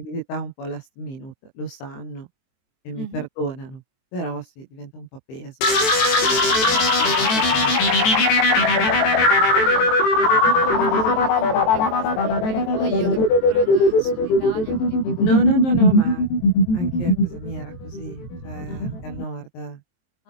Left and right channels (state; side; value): late; right; 23 ms